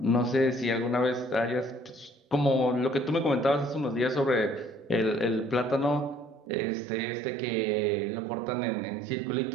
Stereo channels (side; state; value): left; drops out; at 6.5 s